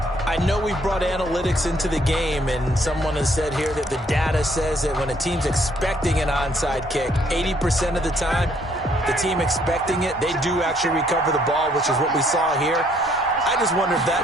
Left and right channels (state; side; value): normal; both; correlation 0.66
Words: I know we brought analytics into the game, and someone has said here that the data says that when a team's expecting an onside kick, 80% of the time, the team expecting it, they do actually recover the ball, which is what we saw here. I just wonder if that